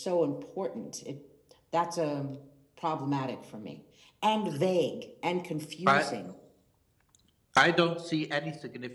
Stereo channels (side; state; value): both; identical; correlation 1.00